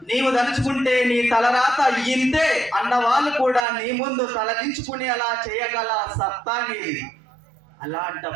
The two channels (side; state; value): left; drops out; at 3.6 s